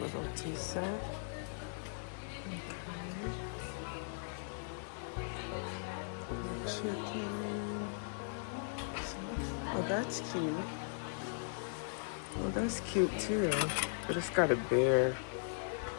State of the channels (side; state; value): right; silent; 52 dB below the other